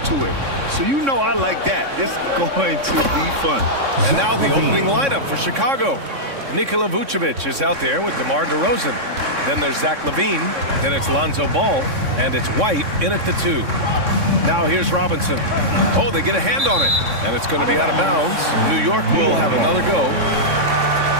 it. So you know I like that. It's going to be fun. And now the opening lineup for Chicago. Nikola Vucevic is out there with DeMar DeRozan. Then there's Zach LaVine. Then it's Lonzo Ball. And it's White in at the 2. Now here's Robinson. Oh, they get a hand on it. And it's going to be out of bounds. New York will have another go.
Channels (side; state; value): left; late; 3.6 ms